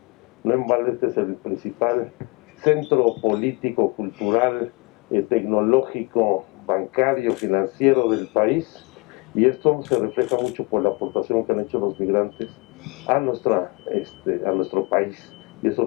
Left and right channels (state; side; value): quieter; right; 26.2 dB